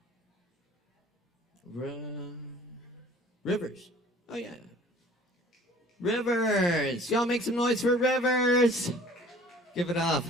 Rivers. Oh, yeah. Rivers. Y'all make some noise for Rivers. Give it up.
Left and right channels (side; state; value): both; normal; correlation 0.50